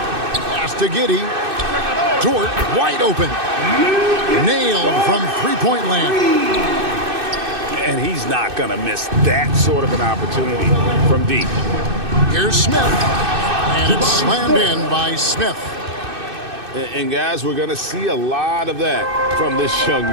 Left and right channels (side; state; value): left; late; 2.6 ms